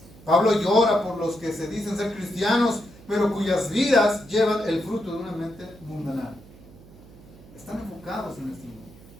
Pablo llora por los que se dicen ser cristianos, pero cuyas vidas llevan el fruto de una mente mundana. Están enfocados en este mundo.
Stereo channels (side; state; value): right; noise; hum, 22 dB below the sound